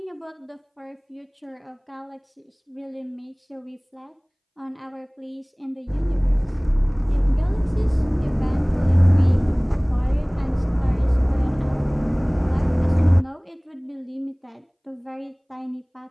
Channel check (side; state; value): both; identical; correlation 1.00